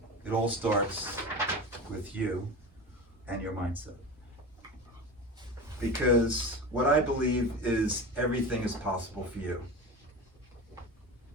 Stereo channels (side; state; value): both; normal; correlation 0.28